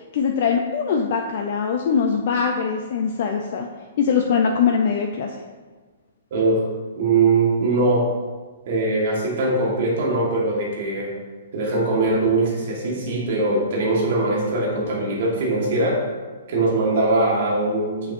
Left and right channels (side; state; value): both; inverted; correlation -0.39